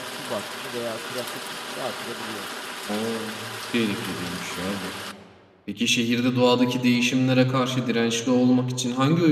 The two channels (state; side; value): identical; both; correlation 1.00